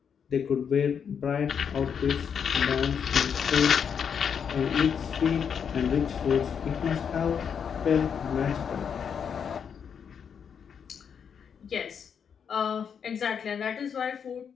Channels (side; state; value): right; quieter; 7.2 dB